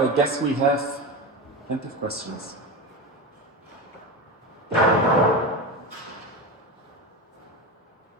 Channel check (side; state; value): both; normal; correlation 0.21